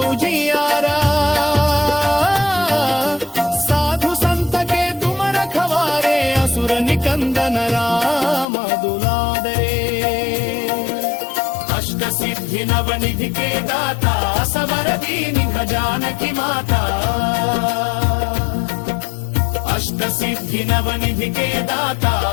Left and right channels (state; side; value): drops out; right; at 8.5 s